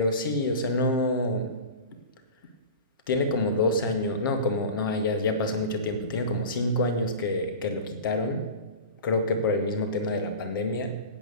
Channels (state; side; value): inverted; both; correlation -0.33